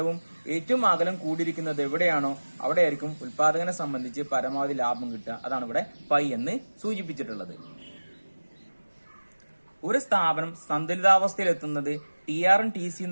ഏറ്റവും അകലം കൂടിയിരിക്കുന്നത് എവിടെയാണോ അവിടെ ആയിരിക്കും ഉൽപാദകനെ സംബന്ധിച്ച് പരമാവധി ലാഭം കിട്ടുക. അതാണ് ഇവിടെ പൈ എന്ന് സൂചിപ്പിച്ചിട്ടുള്ളത്. ഒരു സ്ഥാപനം സന്തുലിതാവസ്ഥയിൽ എത്തുന്നത് ടി ആറും ടി സിയും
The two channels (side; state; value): both; inverted; correlation -1.00